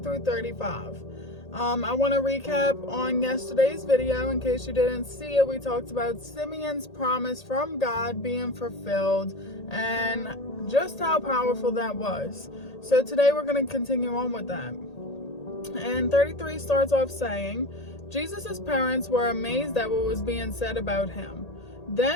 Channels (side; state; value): right; late; 1.8 ms